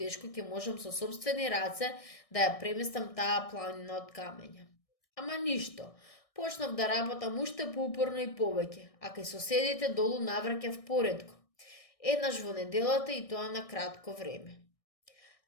ќе можам со сопствени раце да ја преместам таа планина од камења. Ама ништо, почнав да работам уште поупорно и повеќе, а кај соседите долу навраќав поретко. Еднаш во неделата и тоа на кратко време.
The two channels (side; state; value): right; late; 1.6 ms